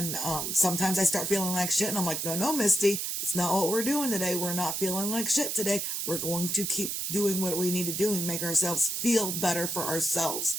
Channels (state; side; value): noise; right; hiss, 2 dB below the sound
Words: sometimes I start feeling like shit and I'm like, no, Misty, it's not what we're doing today. We're not feeling like shit today. We're going to keep doing what we need to do and make ourselves feel better for ourselves.